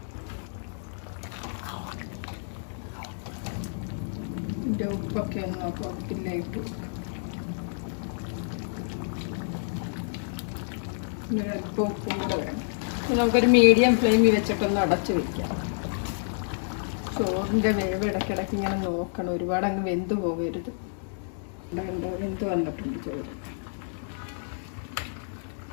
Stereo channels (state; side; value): silent; right; digital silence